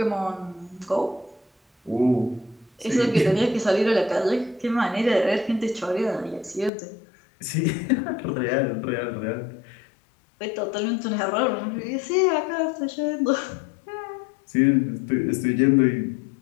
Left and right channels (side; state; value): right; drops out; at 6.7 s